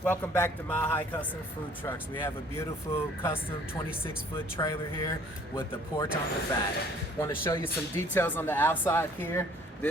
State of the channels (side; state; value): both; normal; correlation 0.56